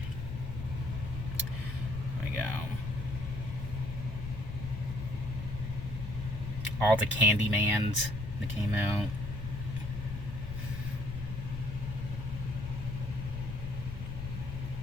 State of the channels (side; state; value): left; noise; rumble, 6 dB below the sound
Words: There we go. All the Candymans that came out.